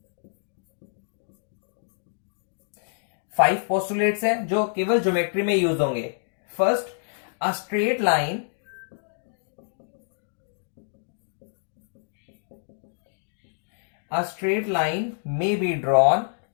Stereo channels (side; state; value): right; silent; digital silence